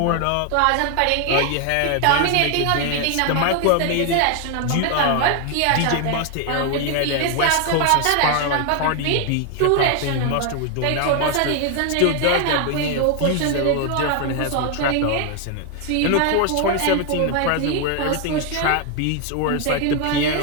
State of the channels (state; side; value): different; both; correlation 0.01